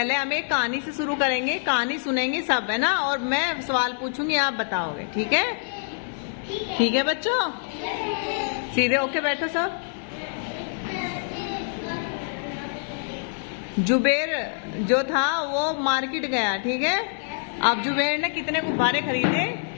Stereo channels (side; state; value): right; silent; 57 dB below the other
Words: हम एक कहानी से शुरू करेंगे, कहानी सुनेंगे सब, है ना, और मैं सवाल पूछूंगी, आप बताओगे, ठीक है? ठीक है बच्चों, सीधे होके बैठो सब। जुबेर जो था वो मार्केट गया, ठीक है। अब जुबेर ने कितने गुब्बारे खरीदे?